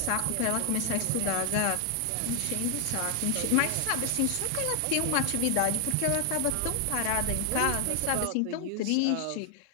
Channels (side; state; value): both; different; correlation 0.00